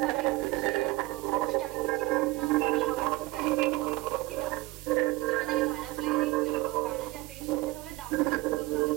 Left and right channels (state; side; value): quieter; left; 20.3 dB